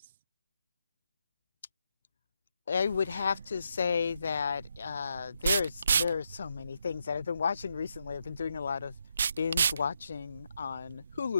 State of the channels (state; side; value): inverted; both; correlation -0.82